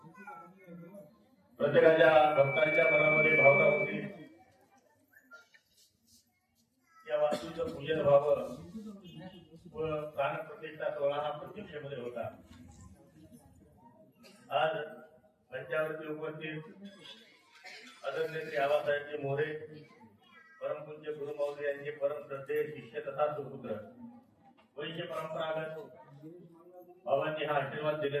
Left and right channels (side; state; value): both; identical; correlation 1.00